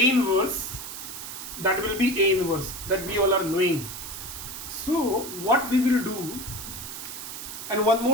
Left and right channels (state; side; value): noise; right; hiss, 9 dB below the sound